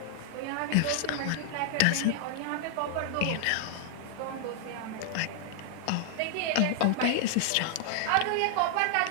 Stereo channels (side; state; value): both; different; correlation -0.01